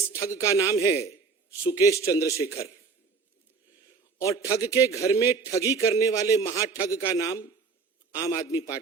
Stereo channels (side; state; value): left; quieter; 5.0 dB